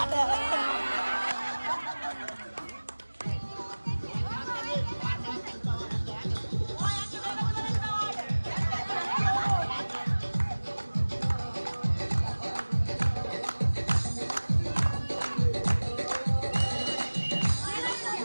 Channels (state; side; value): inverted; both; correlation -1.00